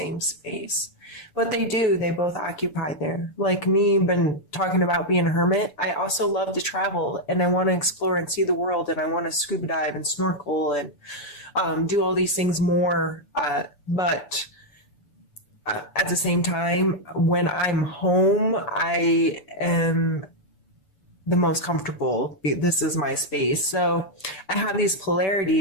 space. But they do. They both occupy there. Like me, been talking about being a hermit. I also love to travel and I want to explore and see the world and I want to scuba dive and snorkel and do all these things more. But at the same time, when I'm home, I am the most comfortable. This is my space. So I have these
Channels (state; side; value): late; right; 6.9 ms